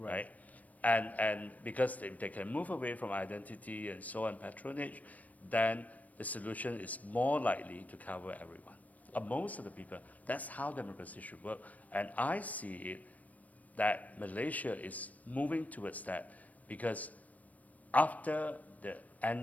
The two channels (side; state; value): right; late; 0.072 ms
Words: And because if they can move away from identity and so on, patronage, then the solution is more likely to cover everyone. Most of the people, that's how democracy should work. And I see it that Malaysia is moving towards that because after the